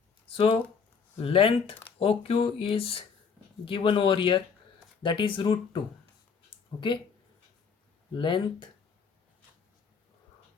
So length OQ is given over here, that is root 2. Okay, length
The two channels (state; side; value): quieter; right; 5.9 dB